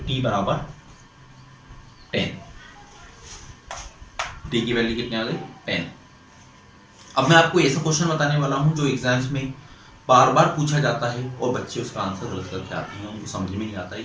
T बराबर 10। T की वैल्यू कितनी आ गई, 10। अब मैं आपको ऐसा क्वेश्चन बताने वाला हूं जो एग्जाम्स में बार बार पूछा जाता है और बच्चे उसका आंसर गलत करके आते हैं, उनको समझ में नहीं आता है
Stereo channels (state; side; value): identical; both; correlation 1.00